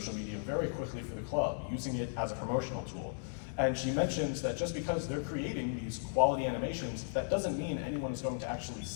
media very quickly for the club, using it as a promotional tool. And she mentions that just because they're creating these quality animations, that doesn't mean anyone's going to actually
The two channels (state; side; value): silent; right; digital silence